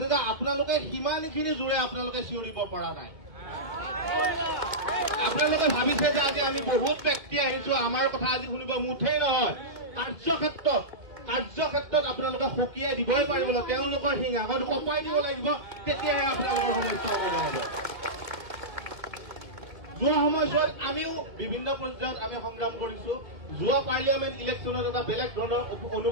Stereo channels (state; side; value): late; left; 2.1 ms